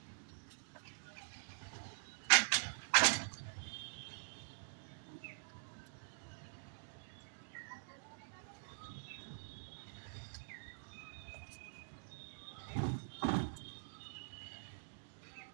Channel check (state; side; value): silent; left; digital silence